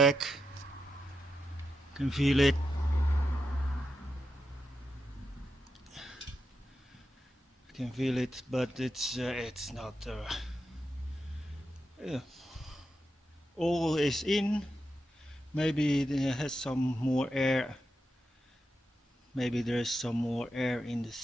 Can feel it. Can feel it, but it's not. All is in. Maybe it has some more air. Maybe there's some more air in the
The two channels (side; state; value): both; normal; correlation 0.87